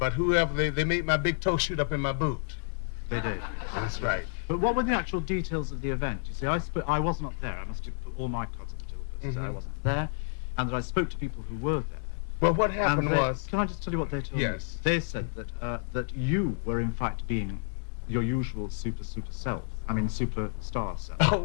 whoever, they made my big toe shoot up in my boot. They did. That's right. But what were the actual details of the event? You see, I was not there. I must put all my cards on the table first. I wasn't there, and that I spoke to people who were there. Well, what happened was... Can I just tell you what they told me? Yes. They said that you were in fact being your usual super self. I mean, superstar self.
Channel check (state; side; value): silent; right; digital silence